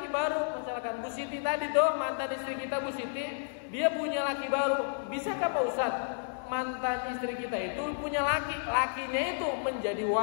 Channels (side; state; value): right; silent; 57 dB below the other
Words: baru, misalkan Bu Siti tadi tuh mantan istri kita Bu Siti, dia punya laki baru. Bisakah Pak Ustadz mantan istri kita itu punya lakinya itu menjadi